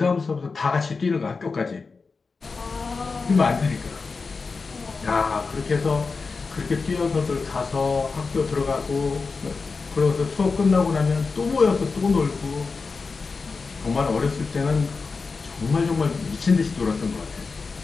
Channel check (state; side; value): quieter; right; 4.5 dB